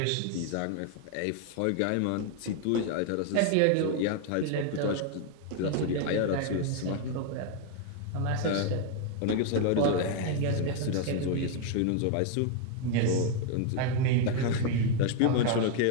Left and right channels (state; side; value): different; both; correlation 0.01